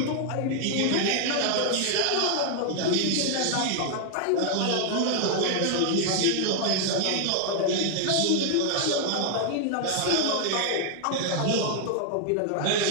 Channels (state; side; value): different; both; correlation 0.00